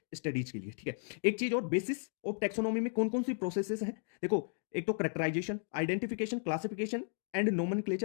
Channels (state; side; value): silent; right; digital silence